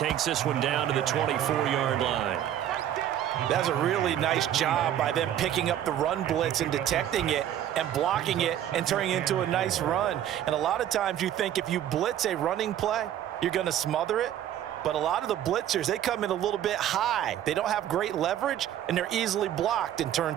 this one down to the 24-yard line. That's a really nice job by them picking up the run blitz and detecting it and blocking it and turning it into a nice run. And a lot of times you think if you blitz a running play, you're going to smother it. But a lot of the blitzers, they come in a little bit high. They don't have great leverage, and they're easily blocked and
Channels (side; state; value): left; quieter; 11.1 dB